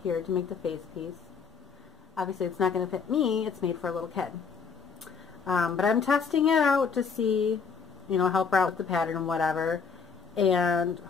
here to make the face piece. Obviously it's not going to fit me, it's made for a little kid. But I'm testing it out to see, you know, help her out with the pattern and whatever. And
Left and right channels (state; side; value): quieter; right; 5.7 dB